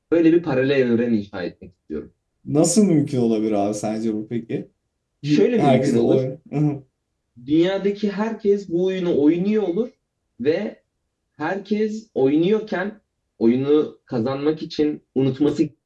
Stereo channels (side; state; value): both; identical; correlation 1.00